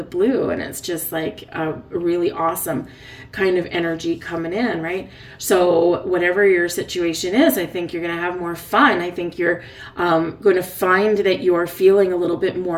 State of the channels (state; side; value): identical; both; correlation 1.00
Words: blue, and it's just like a really awesome kind of energy coming in, right? So whatever your situation is, I think you're going to have more fun. I think you're going to find that you're feeling a little bit